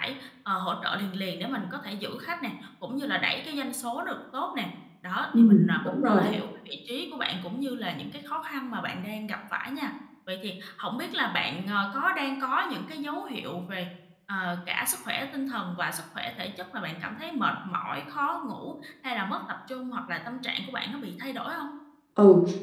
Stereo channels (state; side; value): identical; both; correlation 1.00